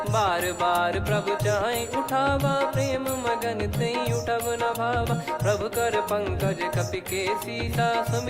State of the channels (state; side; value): identical; both; correlation 1.00